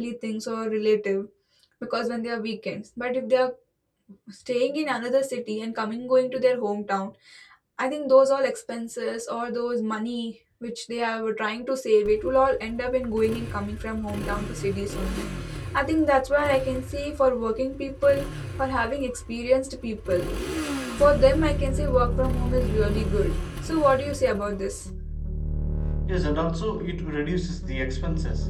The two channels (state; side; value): identical; both; correlation 1.00